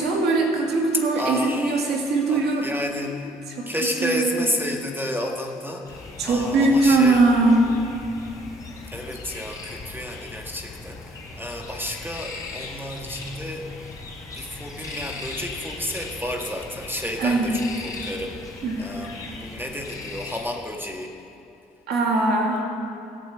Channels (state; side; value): normal; both; correlation 0.60